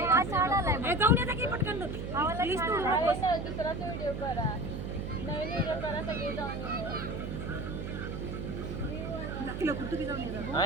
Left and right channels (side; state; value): right; noise; hum, 5 dB below the sound